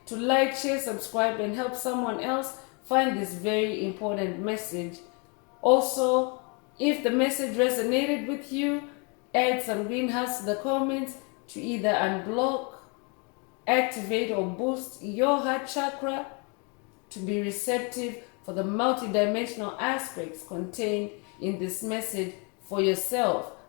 to like, share, subscribe, and help someone else find this very important message. Also, if the message resonated with you, add some green hearts to the comments to either unblock, activate, or boost your heart chakra to be receptive for the multidimensional aspects contained in this message for yourself.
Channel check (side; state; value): right; quieter; 33.8 dB